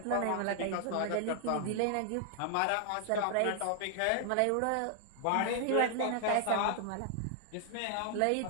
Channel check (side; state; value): both; different; correlation 0.00